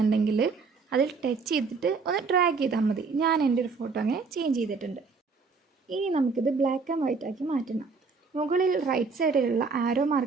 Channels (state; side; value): quieter; left; 4.7 dB